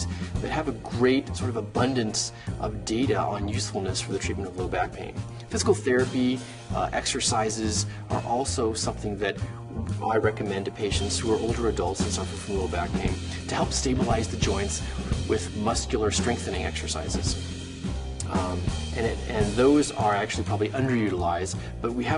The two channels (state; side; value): identical; both; correlation 1.00